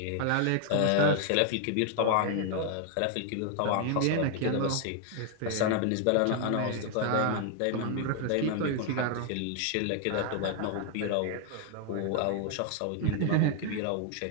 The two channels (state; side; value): different; both; correlation 0.00